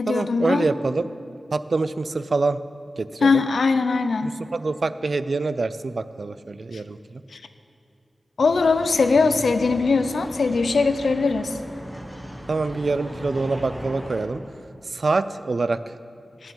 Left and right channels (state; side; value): normal; both; correlation 0.91